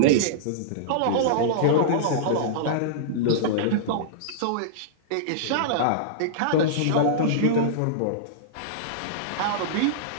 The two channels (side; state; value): both; different; correlation -0.03